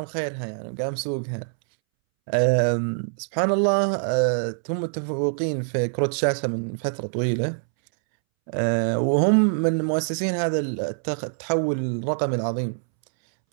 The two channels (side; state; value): left; silent; 62 dB below the other